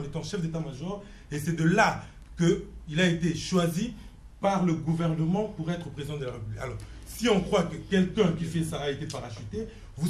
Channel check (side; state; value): both; identical; correlation 1.00